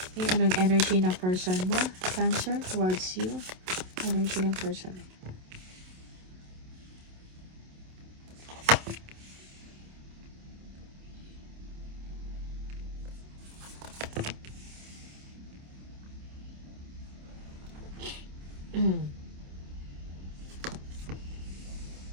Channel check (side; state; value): left; late; 27 ms